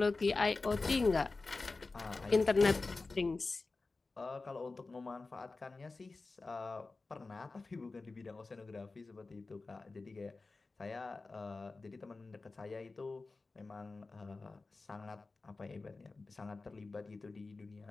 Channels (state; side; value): quieter; right; 3.7 dB